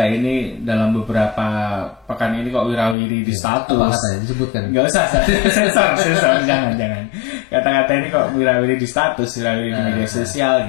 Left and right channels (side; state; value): right; drops out; at 3.0 s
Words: ini dalam beberapa pekan ini kok wirawiri di status. Apa katanya disebutkan? Nggak usah, sensor, jangan. Kata-kata ini kok wirawiri di status, wirawiri di media sosial